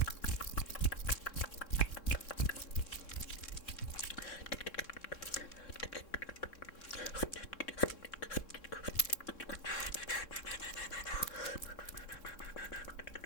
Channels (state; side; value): late; right; 3.6 ms